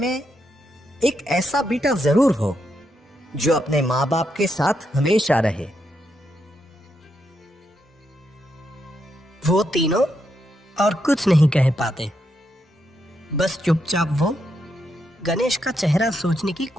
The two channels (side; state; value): both; normal; correlation 0.81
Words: एक ऐसा बेटा जरूर हो जो अपने माँ बाप के साथ हमेशा रहे। वो तीनों और कुछ नहीं कह पाते। बस चुपचाप वो गणेश का चेहरा सोचने की